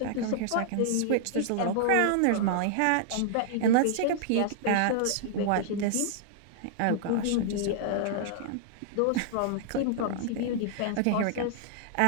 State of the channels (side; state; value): both; different; correlation -0.01